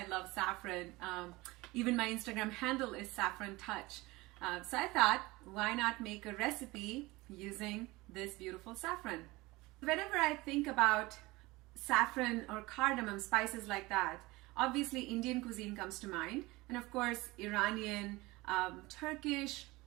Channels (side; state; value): left; quieter; 21.5 dB